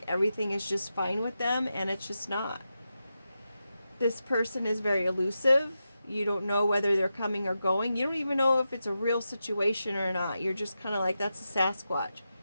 everything is just fine with them, and it's just not. This person is very elusive. You don't know whether they're coming or going. You don't even know if it's a real situation or not. You're just kind of like, that's a Sasquatch.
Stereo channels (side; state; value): both; inverted; correlation -0.89